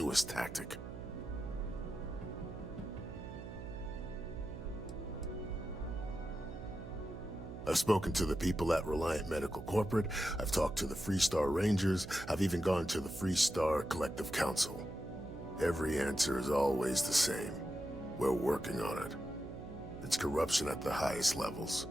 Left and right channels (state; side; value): noise; right; hum, 11 dB below the sound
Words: tactic. I've spoken to the people at Reliant Medical Corporate, I've talked to the Freestar Rangers, I've even gone to the Freestar Collective Council. Every answer is always the same. We're working on it. It's corruption at the highest levels.